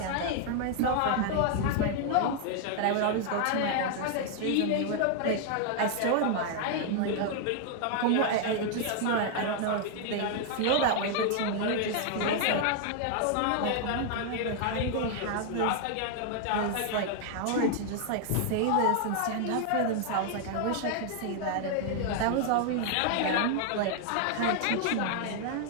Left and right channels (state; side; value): different; both; correlation 0.00